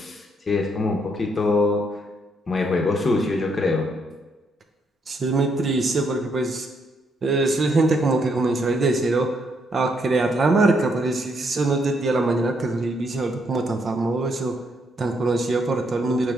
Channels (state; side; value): normal; both; correlation 0.74